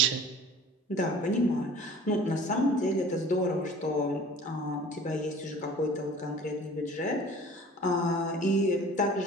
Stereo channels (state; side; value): normal; both; correlation 0.45